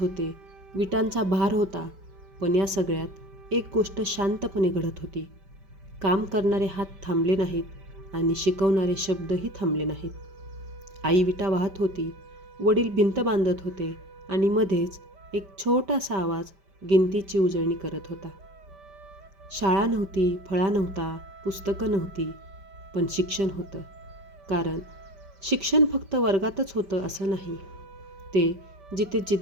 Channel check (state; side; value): late; left; 5.1 ms